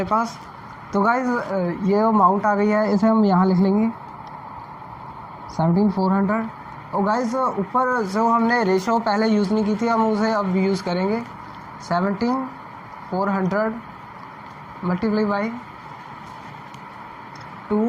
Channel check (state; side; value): identical; both; correlation 1.00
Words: पास। तो गाइज ये अमाउंट आ गई है, इसे हम यहाँ लिख लेंगे 17400। और गाइज ऊपर जो हमने रेशो पहले यूज़ नहीं की थी हम उसे अब यूज़ करेंगे। 17400 मल्टीप्लाई बाई